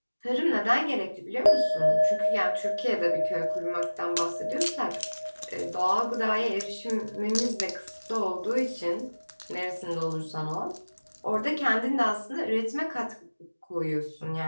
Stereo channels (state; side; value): inverted; both; correlation -1.00